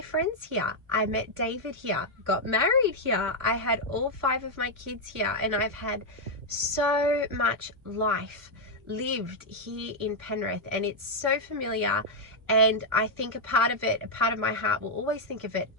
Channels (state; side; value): late; left; 1.4 ms